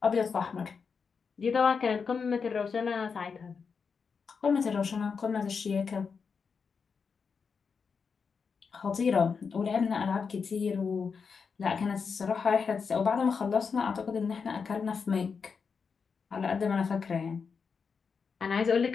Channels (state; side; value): quieter; right; 5.6 dB